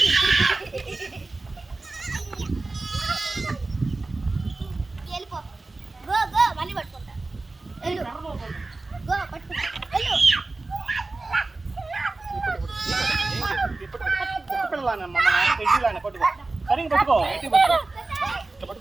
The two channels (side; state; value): left; quieter; 3.3 dB